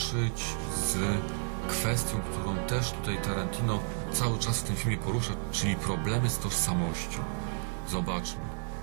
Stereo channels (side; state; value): left; silent; 57 dB below the other